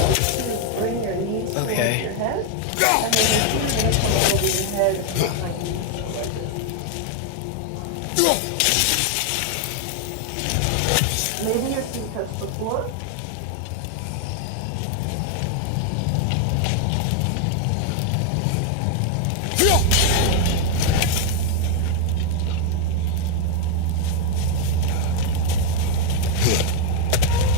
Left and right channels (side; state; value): both; different; correlation 0.01